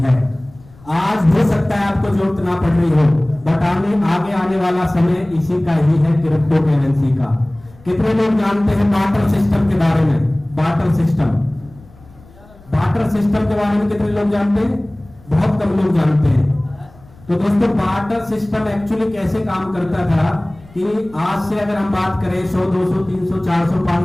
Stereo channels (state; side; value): noise; left; rumble, 25 dB below the sound